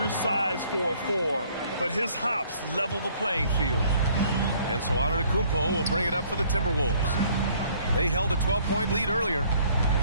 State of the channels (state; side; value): inverted; both; correlation -0.60